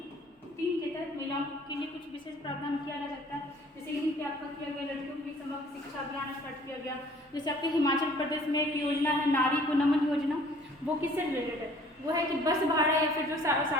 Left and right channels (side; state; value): both; normal; correlation 0.54